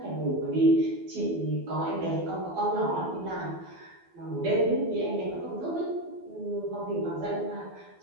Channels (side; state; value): left; late; 12 ms